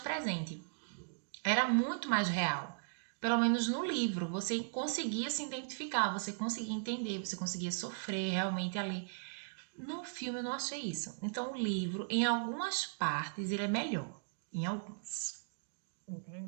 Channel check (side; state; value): left; silent; digital silence